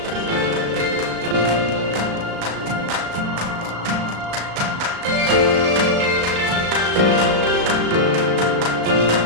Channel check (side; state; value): left; late; 36 ms